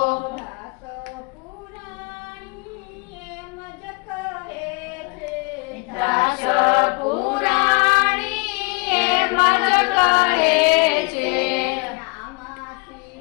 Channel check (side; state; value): right; quieter; 30.4 dB